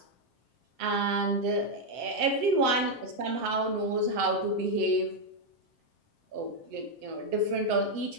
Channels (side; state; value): left; late; 7.6 ms